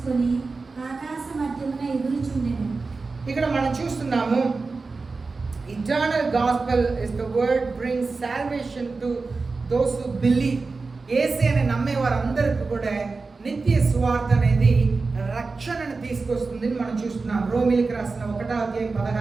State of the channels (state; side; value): quieter; left; 4.0 dB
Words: ఆకాశ మధ్యమున ఎగురుచుండెను. ఇక్కడ మనం చూస్తున్నాము, eternal gospel is the word brings salvation to those who believe. యేసు అని నమ్మే వారందరికీ కూడా నిత్య సువార్త అనేది రక్షణను తీసుకొస్తుంది మనం చూస్తున్నాం. రోమీయులకు రాసిన 1వ అధ్యాయం